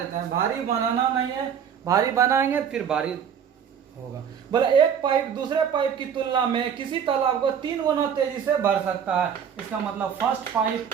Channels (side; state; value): left; quieter; 7.9 dB